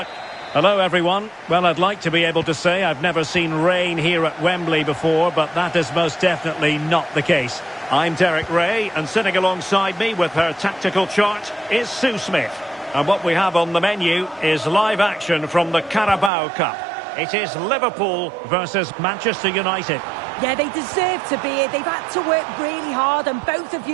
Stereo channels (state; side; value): drops out; left; at 16.3 s